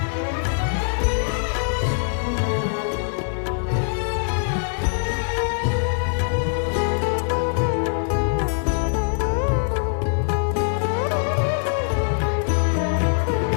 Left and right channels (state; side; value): silent; right; digital silence